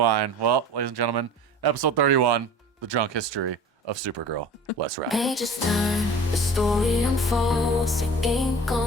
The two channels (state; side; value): normal; both; correlation 0.40